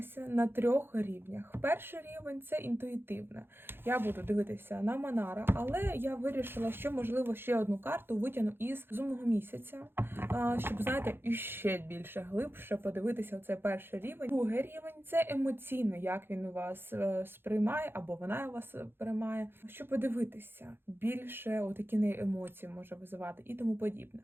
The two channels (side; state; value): left; late; 0.10 ms